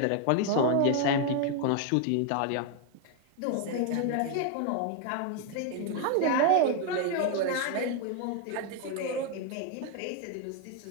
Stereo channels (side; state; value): both; different; correlation 0.01